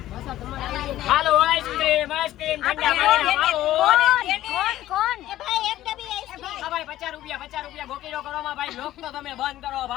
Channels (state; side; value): quieter; right; 14.1 dB